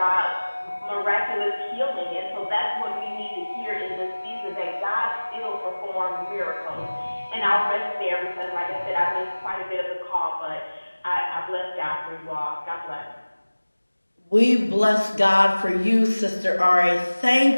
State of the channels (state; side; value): inverted; both; correlation -1.00